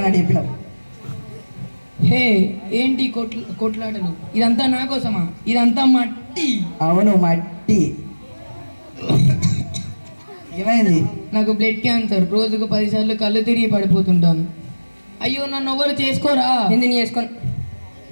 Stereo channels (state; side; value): inverted; both; correlation -1.00